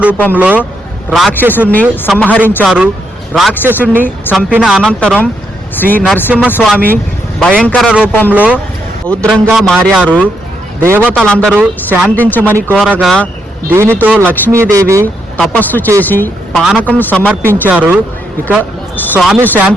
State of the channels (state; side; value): normal; both; correlation 0.78